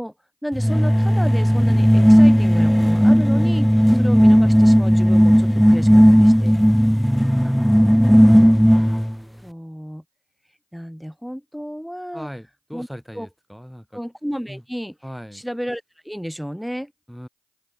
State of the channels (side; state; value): both; identical; correlation 1.00